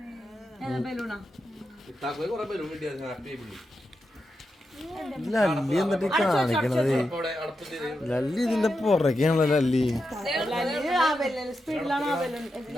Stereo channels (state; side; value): normal; both; correlation 0.87